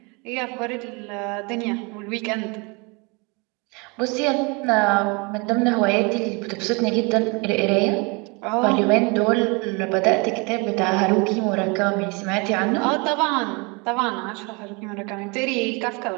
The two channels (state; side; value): quieter; left; 29.6 dB